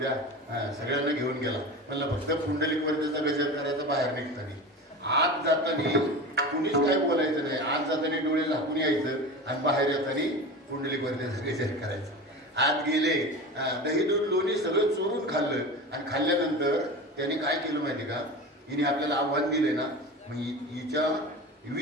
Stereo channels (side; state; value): both; normal; correlation 0.29